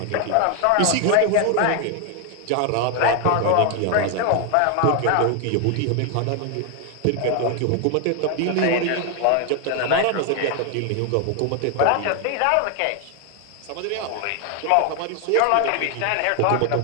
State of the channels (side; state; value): both; different; correlation 0.00